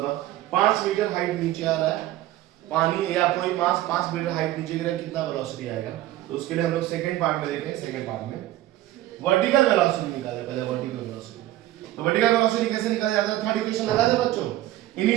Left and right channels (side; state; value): left; quieter; 14.8 dB